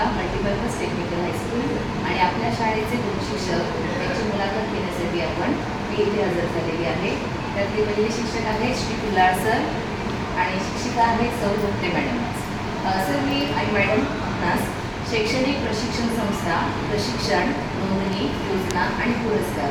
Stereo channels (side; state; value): both; identical; correlation 1.00